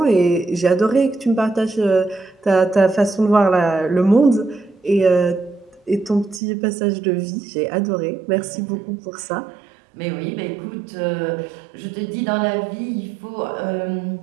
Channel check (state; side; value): drops out; left; at 6.4 s